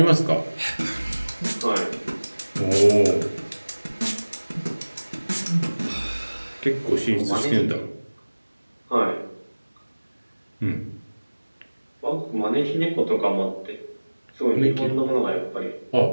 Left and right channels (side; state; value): both; inverted; correlation -1.00